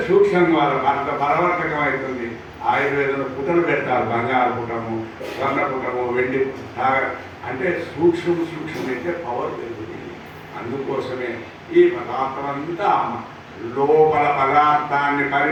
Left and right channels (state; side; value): identical; both; correlation 1.00